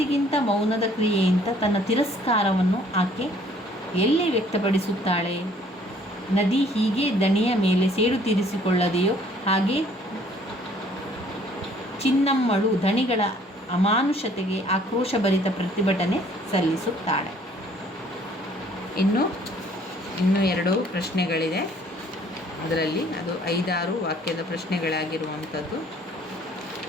ಮೌನದ ಕ್ರಿಯೆಯಿಂದ ತನ್ನ ತಿರಸ್ಕಾರವನ್ನು ಆಕೆ ಎಲ್ಲಿ ವ್ಯಕ್ತಪಡಿಸುತ್ತಾಳೆ? ನದಿ ಹೀಗೆ ದಣಿಯ ಮೇಲೆ ಸೇಡು ತೀರಿಸಿಕೊಳ್ಳದೆಯೋ ಹಾಗೆ ಚಿನ್ನಮ್ಮಳು ಧಣಿಗಳ ಅಮಾನುಷತೆಗೆ ಆಕ್ರೋಶಭರಿತ ಪ್ರತಿಭಟನೆ ಸಲ್ಲಿಸುತ್ತಾಳೆ. ಇನ್ನು 2 ಪ್ರಶ್ನೆಗಳಿದೆ. ಅದರಲ್ಲಿ ಅದು 5-6 ವಾಕ್ಯದ ಪ್ರಶ್ನೆಗಳಾಗಿರುವಂಥದ್ದು.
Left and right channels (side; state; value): both; normal; correlation 0.58